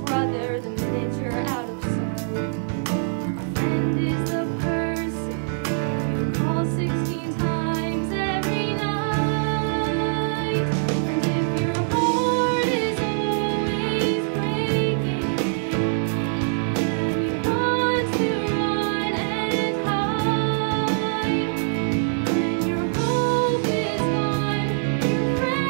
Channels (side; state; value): left; silent; 63 dB below the other